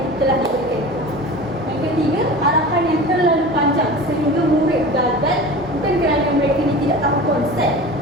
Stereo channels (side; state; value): both; normal; correlation 0.35